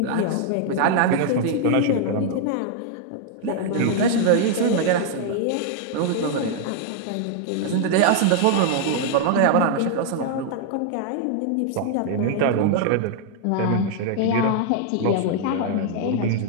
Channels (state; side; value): different; both; correlation 0.00